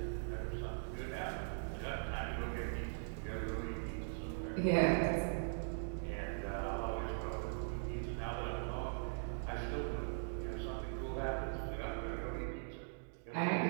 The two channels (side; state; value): left; silent; digital silence